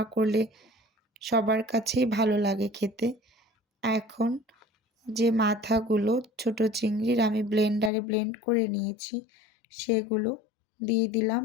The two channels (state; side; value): drops out; right; at 7.9 s